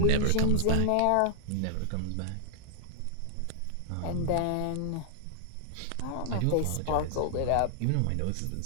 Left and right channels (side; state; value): both; different; correlation -0.01